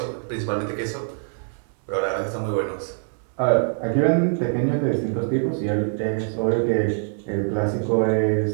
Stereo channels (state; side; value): silent; left; digital silence